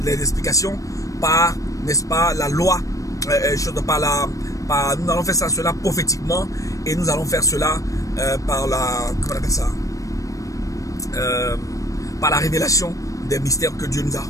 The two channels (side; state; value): right; late; 0.16 ms